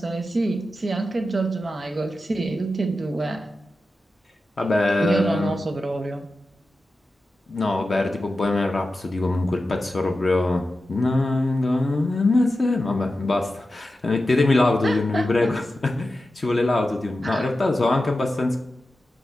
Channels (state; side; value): normal; both; correlation 0.92